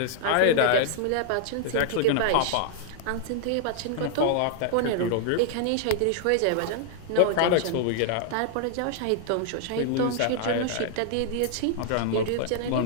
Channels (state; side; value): different; both; correlation -0.01